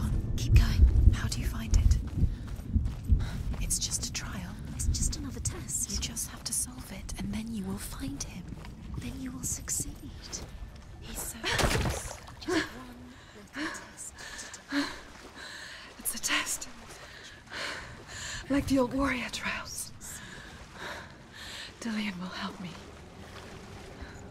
Keep going. How do you find it? It's just a trial. It's just another test. You just have to solve it, and then you will find him. Then you will succeed. He's so close. Just one little test to do. It's a test. Like the old warrior trials. Dillian will help me.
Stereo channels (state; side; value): identical; both; correlation 1.00